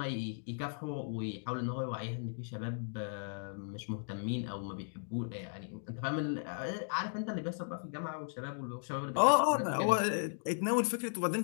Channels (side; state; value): right; silent; digital silence